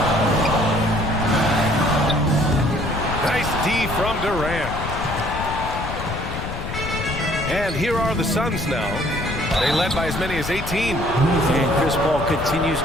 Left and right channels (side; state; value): left; noise; rumble, 6 dB below the sound